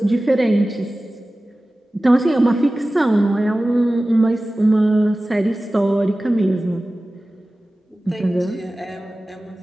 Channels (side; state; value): both; normal; correlation 0.96